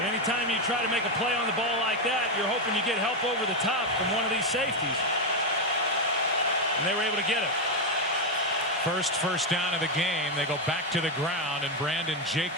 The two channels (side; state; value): both; normal; correlation 0.06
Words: anytime you try to make a play on the ball like that, you're hoping you get help over the top from one of these safeties. And they were able to get it. First down of the game. They go back to the ground, and Brandon